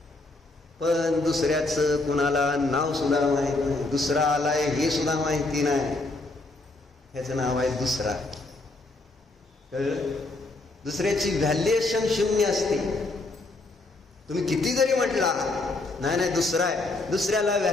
पण दुसऱ्याचं कुणाला नाव सुद्धा माहित नाही. दुसरा आलाय हे सुद्धा माहिती नाही. ह्याचं नाव आहे दुसरा. दुसऱ्याची व्हॅल्युएशन 0 असते. तुम्ही किती जरी म्हटला नाही दुसरा आहे, दुसऱ्याला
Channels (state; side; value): quieter; right; 3.1 dB